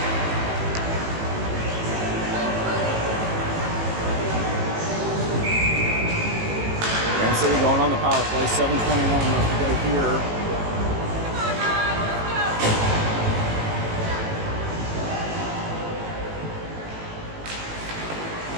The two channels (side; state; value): left; late; 18 ms